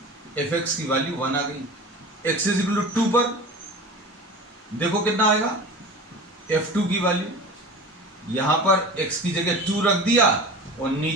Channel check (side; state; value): both; normal; correlation 0.35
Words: fx की वैल्यू 1 आ गई. x इज इक्वल टू 2 पर देखो कितना आएगा, f2 की वैल्यू, यहां पर x की जगह 2 रख दिया और